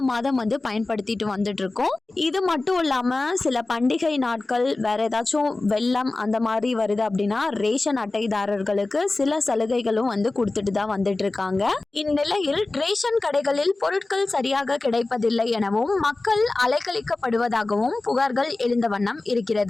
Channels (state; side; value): quieter; right; 3.2 dB